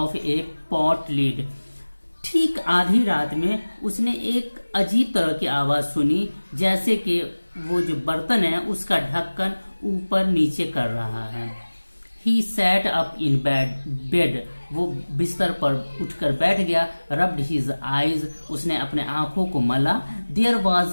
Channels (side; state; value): both; inverted; correlation -1.00